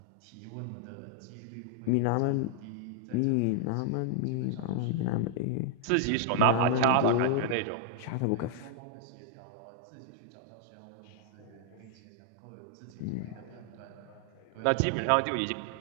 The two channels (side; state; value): both; different; correlation -0.01